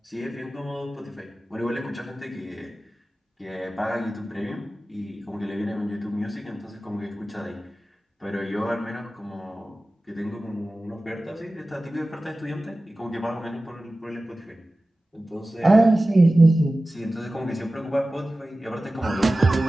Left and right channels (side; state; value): both; normal; correlation 0.96